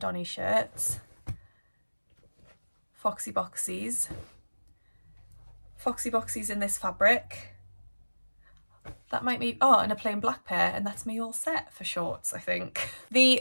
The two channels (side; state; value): both; inverted; correlation -1.00